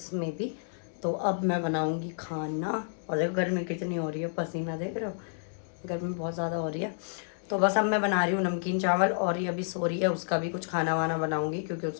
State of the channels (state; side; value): silent; right; digital silence